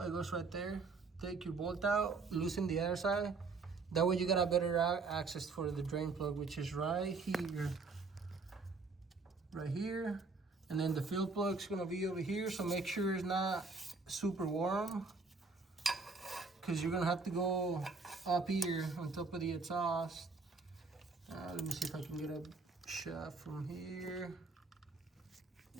it goes right there. Take your bolt out, loosen the other side. That way you got a better access for the drain plug, which is right here. Right here. And then the fill plug's gonna be over here, so make sure it's not super warm, because you're gonna have to go up here on top of the exhaust. Let me see if I can get a shot from here.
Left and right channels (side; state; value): left; quieter; 4.2 dB